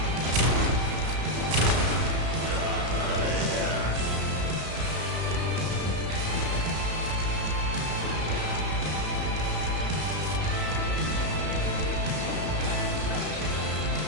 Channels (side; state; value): left; late; 33 ms